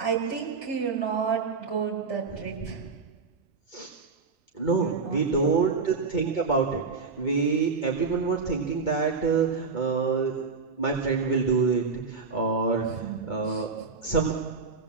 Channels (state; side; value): quieter; left; 4.7 dB